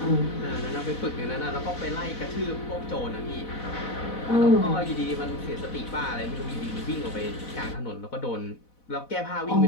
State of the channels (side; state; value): right; late; 4.1 ms